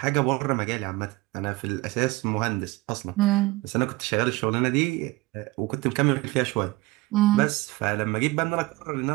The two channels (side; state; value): left; quieter; 21.3 dB